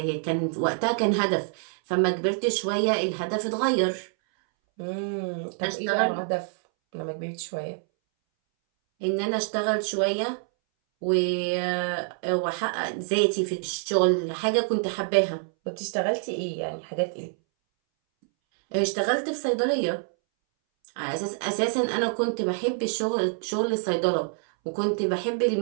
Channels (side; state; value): left; silent; 61 dB below the other